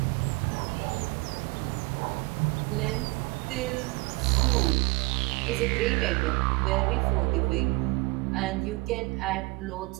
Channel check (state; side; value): quieter; left; 25.3 dB